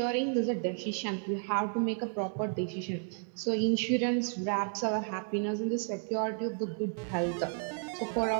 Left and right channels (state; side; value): silent; left; 56 dB below the other